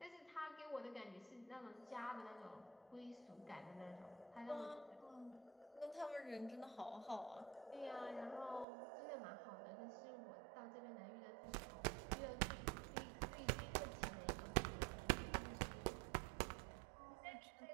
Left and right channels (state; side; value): drops out; left; at 8.7 s